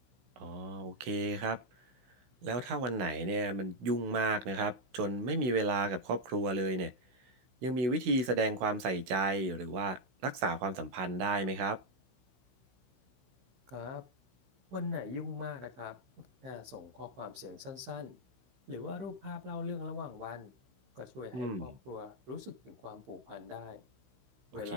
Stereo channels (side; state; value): left; late; 16 ms